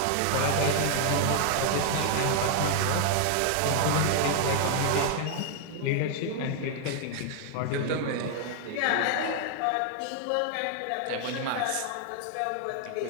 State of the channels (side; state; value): both; different; correlation 0.00